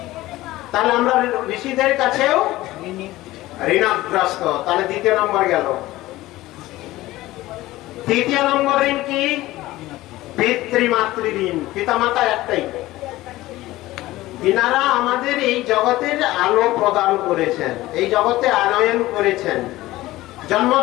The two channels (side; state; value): right; quieter; 17.3 dB